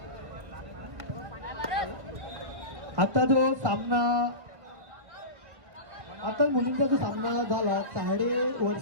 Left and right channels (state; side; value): late; left; 1.7 ms